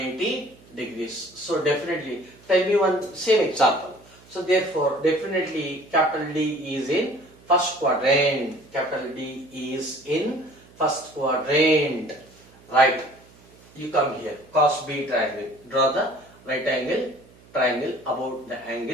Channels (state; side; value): noise; right; hum, 26 dB below the sound